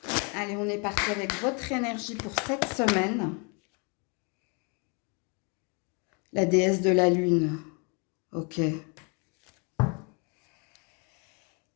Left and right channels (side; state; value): right; quieter; 33.0 dB